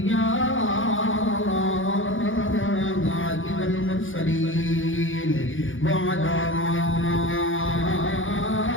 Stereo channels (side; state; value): right; late; 0.58 ms